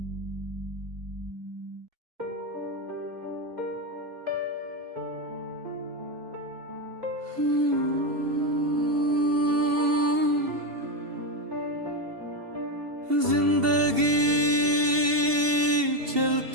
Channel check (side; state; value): left; late; 2.7 ms